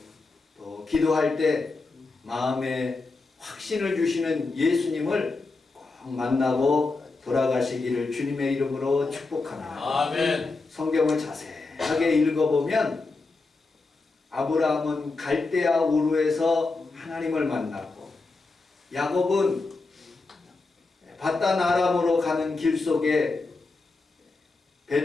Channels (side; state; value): right; quieter; 3.7 dB